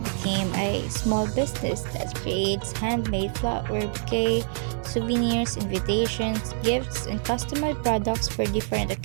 a small business that creates handmade flower bouquet, souvenirs, invitations, gifts, and customized products for different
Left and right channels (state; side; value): silent; left; 61 dB below the other